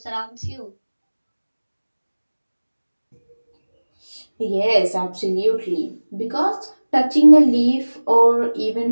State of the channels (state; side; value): inverted; both; correlation -1.00